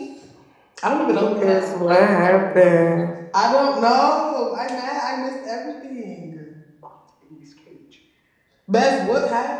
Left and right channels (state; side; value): identical; both; correlation 1.00